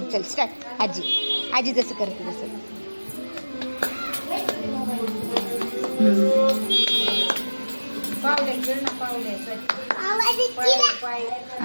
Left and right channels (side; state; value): both; inverted; correlation -1.00